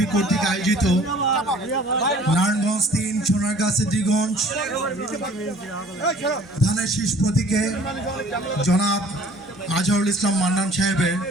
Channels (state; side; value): normal; both; correlation 0.52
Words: কর্তৃক আয়োজিত নারায়ণগঞ্জ 3 সোনারগাঁ সিদ্ধিরগঞ্জ ধানের শীষ প্রতীকে জনাব আজহারুল ইসলাম মান্নান সাহেবের